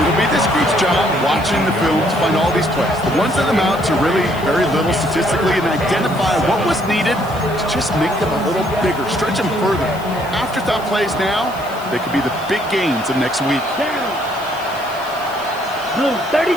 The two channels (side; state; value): left; noise; hiss, 20 dB below the sound